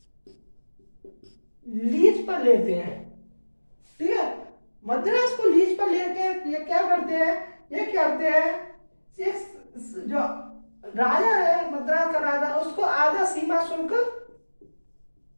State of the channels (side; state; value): both; inverted; correlation -1.00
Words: लीज पर लेते हैं। ठीक है, मद्रास को लीज पर लेके ये क्या करते हैं, जो राजा है मद्रास का राजा, उसको आधा सीमा शुल्क